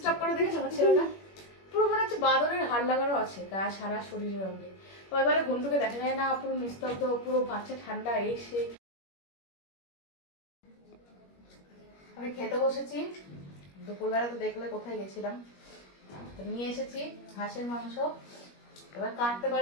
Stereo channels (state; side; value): late; right; 21 ms